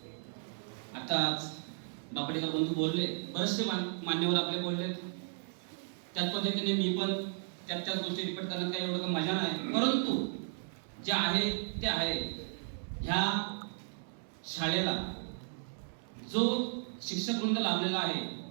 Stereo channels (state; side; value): silent; left; digital silence